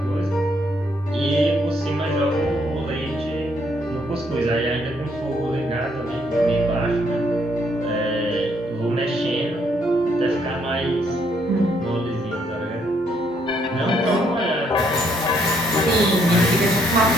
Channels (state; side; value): normal; both; correlation 0.70